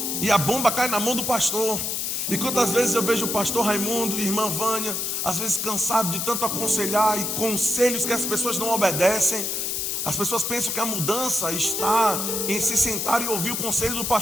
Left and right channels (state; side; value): noise; left; hiss, 1 dB below the sound